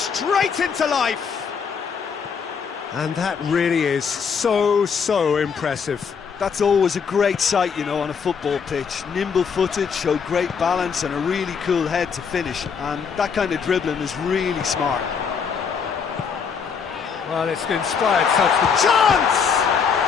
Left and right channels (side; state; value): right; quieter; 6.3 dB